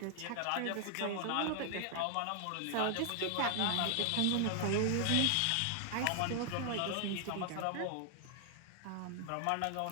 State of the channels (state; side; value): different; both; correlation 0.00